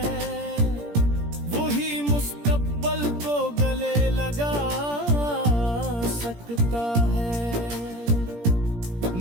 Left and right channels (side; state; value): left; late; 17 ms